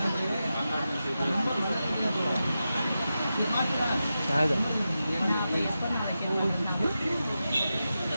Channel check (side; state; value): both; inverted; correlation -0.91